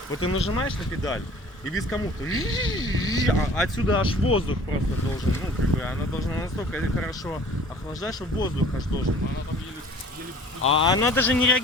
Вот ты нажимаешь на педаль, и вискомуфта... Отсюда аж воздух просто должен... Ну, как бы, она должна настолько хорошо охлаждать, что воздух аж должен. Она там еле... А она даже не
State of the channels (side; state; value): both; normal; correlation 0.48